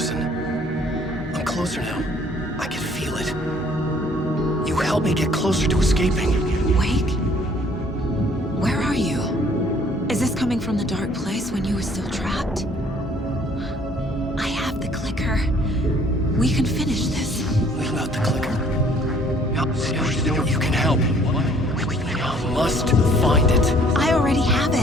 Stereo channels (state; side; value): normal; both; correlation 0.59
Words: I'm closer now. I can feel it. You helped me get closer to escaping. Wait. Where are you? Is this coming from the dark place when you were still trapped? I have the clicker. We can finish this. Without the clicker? You can help. We must find it. I already have